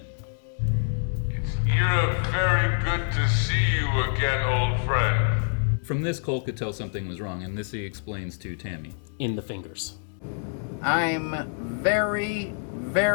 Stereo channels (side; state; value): right; silent; 60 dB below the other